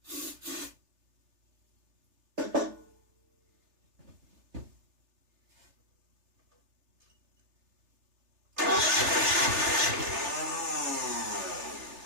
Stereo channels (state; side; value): late; left; 3.3 ms